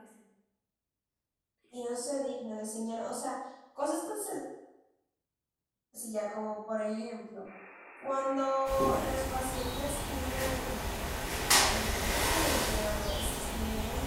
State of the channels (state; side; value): identical; both; correlation 1.00